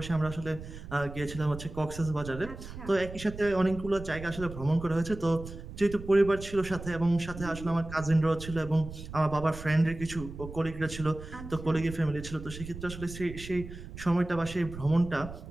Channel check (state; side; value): noise; right; rumble, 12 dB below the sound